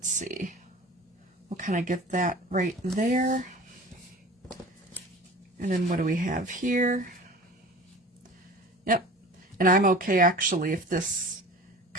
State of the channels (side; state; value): both; normal; correlation 0.39